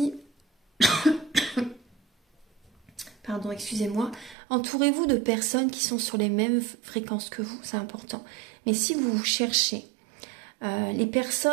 Pardon, excusez-moi. Entourez-vous de personnes qui sont sur les mêmes fréquences que vous, c'est important. Mais si vous cherchez les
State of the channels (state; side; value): drops out; left; at 4.4 s